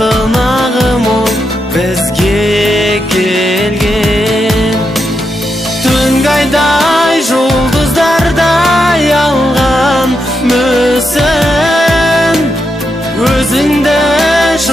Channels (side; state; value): both; normal; correlation 0.84